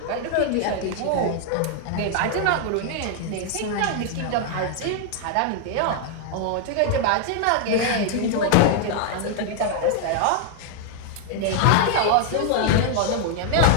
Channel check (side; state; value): both; different; correlation 0.00